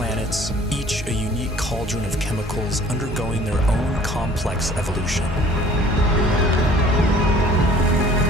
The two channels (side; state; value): both; normal; correlation 0.52